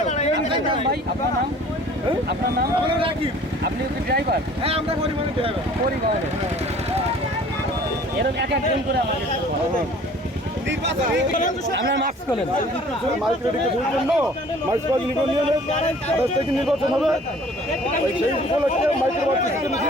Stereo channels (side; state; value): both; normal; correlation 0.51